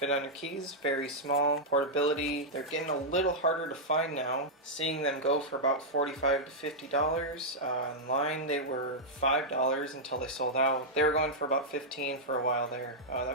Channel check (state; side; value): normal; both; correlation -0.06